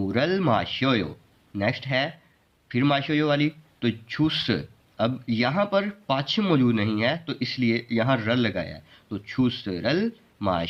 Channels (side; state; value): both; identical; correlation 1.00